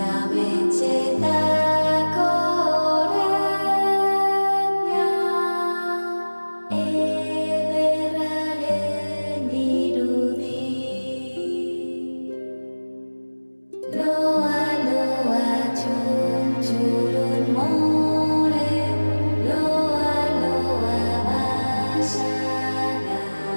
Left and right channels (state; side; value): inverted; both; correlation -1.00